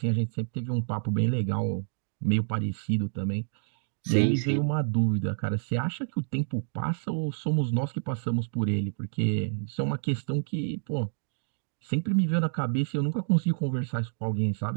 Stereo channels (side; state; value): left; silent; digital silence